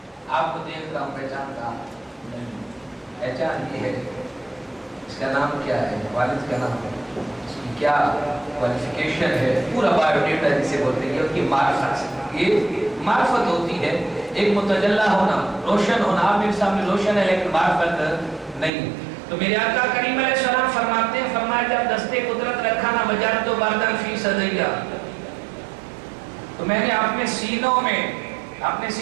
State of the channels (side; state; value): left; drops out; at 18.7 s